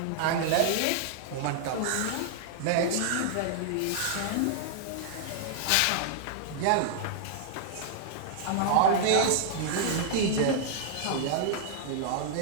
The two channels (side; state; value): both; different; correlation -0.01